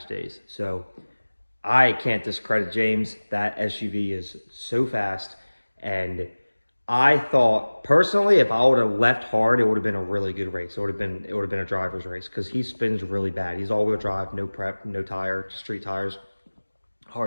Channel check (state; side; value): inverted; both; correlation -1.00